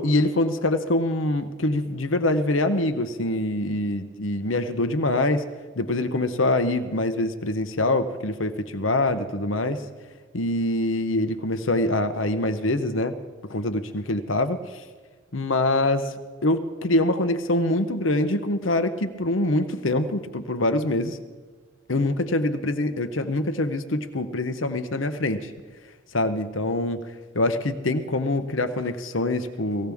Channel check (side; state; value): both; normal; correlation 0.17